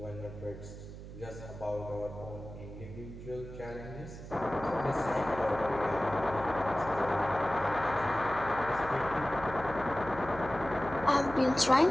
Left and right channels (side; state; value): right; noise; hum, 12 dB below the sound